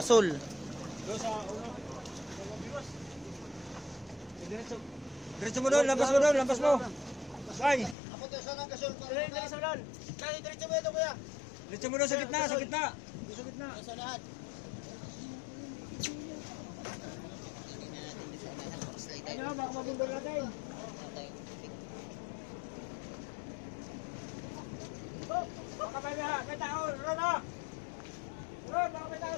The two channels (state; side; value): drops out; right; at 8.0 s